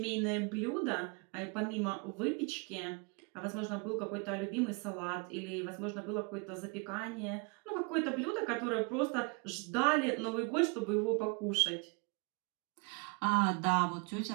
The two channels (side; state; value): left; quieter; 33.2 dB